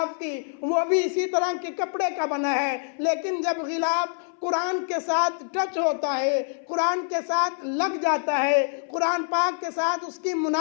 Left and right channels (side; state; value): right; silent; 61 dB below the other